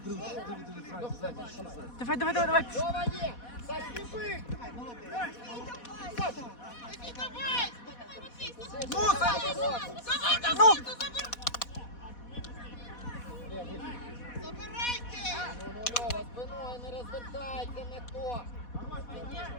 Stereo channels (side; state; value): right; late; 4.1 ms